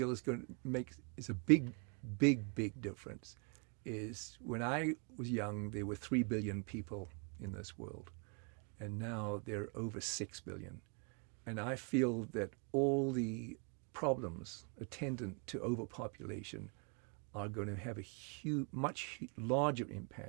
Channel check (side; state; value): left; quieter; 36.7 dB